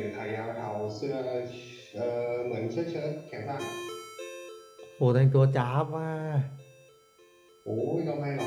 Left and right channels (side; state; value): both; identical; correlation 1.00